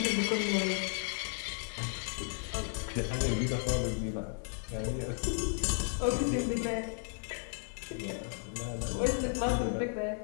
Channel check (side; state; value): right; silent; 55 dB below the other